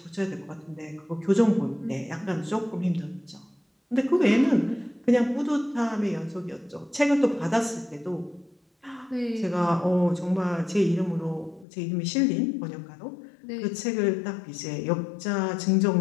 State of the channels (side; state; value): right; drops out; at 11.7 s